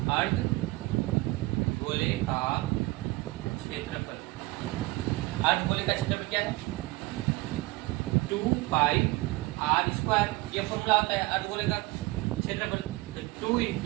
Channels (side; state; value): left; quieter; 21.6 dB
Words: अर्धगोले का क्षेत्रफल क्या है? 2 पाई आर स्क्वायर। ये फॉर्मूला होता है अर्धगोले का क्षेत्रफल। तो 2